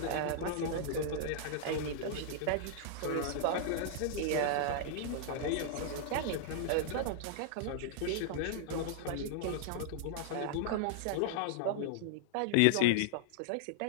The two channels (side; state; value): both; different; correlation -0.01